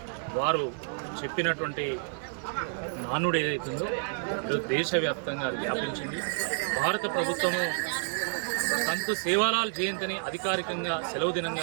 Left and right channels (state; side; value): silent; left; digital silence